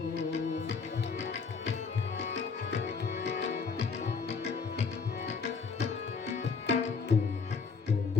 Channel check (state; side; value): quieter; right; 5.3 dB